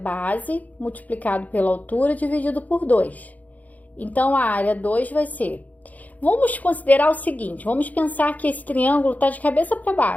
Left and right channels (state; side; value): late; right; 0.077 ms